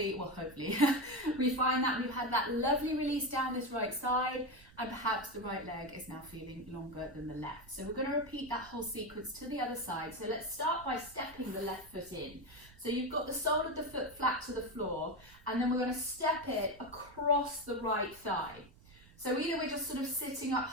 we find that we've had that lovely release down this right side, and perhaps the right leg is now feeling longer than the left. So we're going to repeat that whole sequence to the other side. So let's start by stepping the left foot in. So you've got the sole of the foot flat to the floor, and then we're going to step it across the right thigh. So either we're just sort of sitting up,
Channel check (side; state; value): right; noise; rumble, 23 dB below the sound